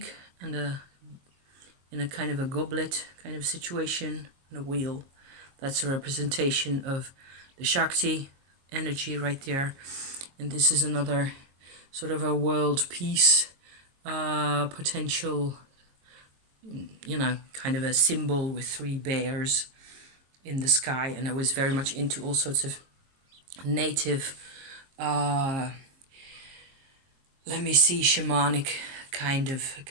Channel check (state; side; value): late; left; 22 ms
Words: and in a kind of a goblet kind of situation and a wheel. That's a representation of the Shakti energy right there. And this is another sort of a world peace potential, you know, kind of a symbol with 3 bears in the sky. And I was very much into all sorts of native, shamanic kind